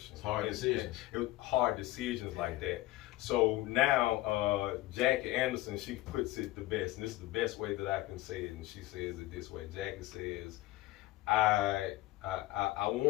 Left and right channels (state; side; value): quieter; right; 17.5 dB